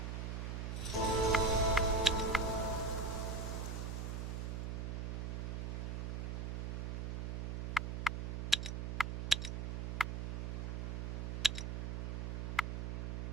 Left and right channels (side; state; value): right; noise; hum, 2 dB below the sound